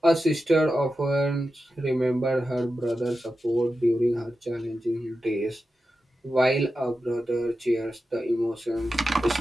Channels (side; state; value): both; normal; correlation 0.91